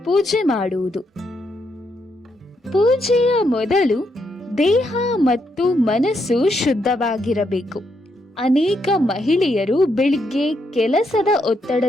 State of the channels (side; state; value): both; normal; correlation 0.78